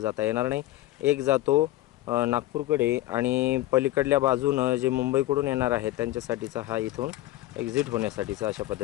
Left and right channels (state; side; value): quieter; right; 15.9 dB